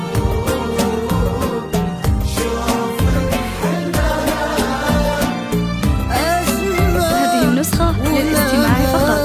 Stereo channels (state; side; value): identical; both; correlation 1.00